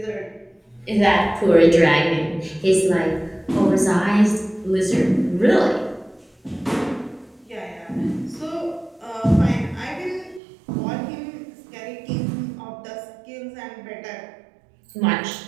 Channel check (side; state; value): left; drops out; at 10.4 s